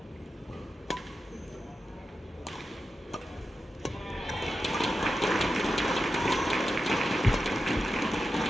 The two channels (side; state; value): both; normal; correlation 0.91